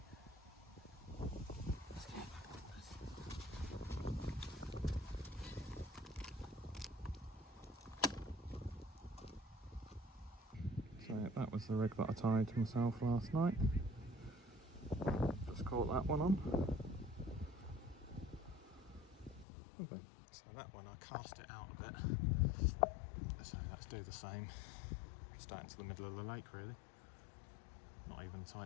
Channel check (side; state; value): right; drops out; at 19.5 s